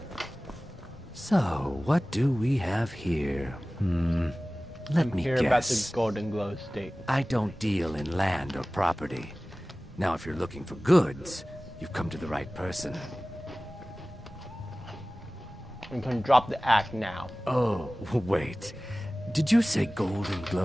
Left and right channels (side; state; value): both; normal; correlation 0.98